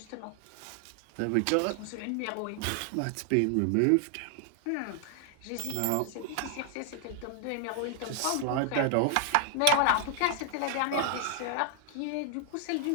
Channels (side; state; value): both; different; correlation 0.00